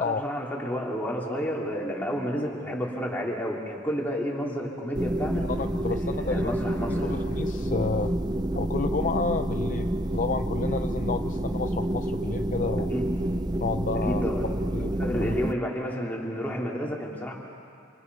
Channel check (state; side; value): normal; both; correlation 0.66